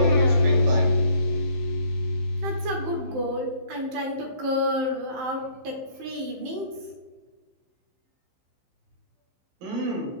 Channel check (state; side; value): late; left; 15 ms